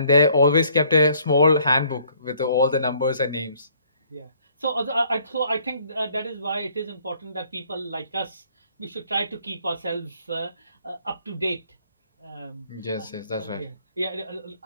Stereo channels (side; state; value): both; inverted; correlation -0.62